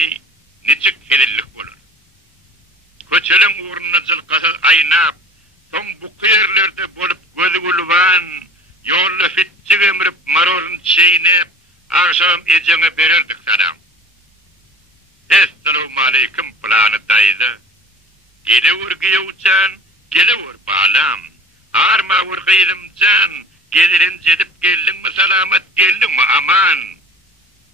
necik helillik olur. Köçelin uğruna zılkasız aynap, son bu kıyırlarda bolup gözü gulvan, yolla fitçik emrip marorun çeynep, akşam ecene verirdik sana. Esselamu aleyküm planı daydı. Gele vurgiye uçan, gele vur bağlam. Arma vurgiydim can, gelirin cedip geldin mi selamet geldin mi aman.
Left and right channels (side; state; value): both; normal; correlation 0.43